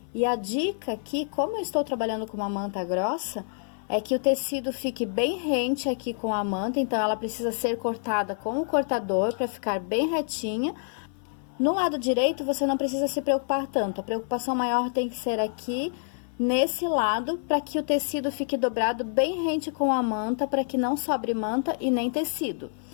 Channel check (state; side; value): silent; right; 57 dB below the other